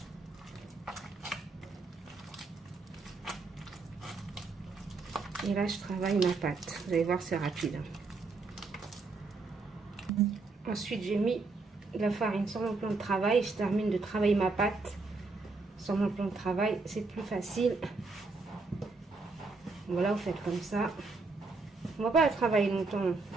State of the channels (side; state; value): left; quieter; 3.8 dB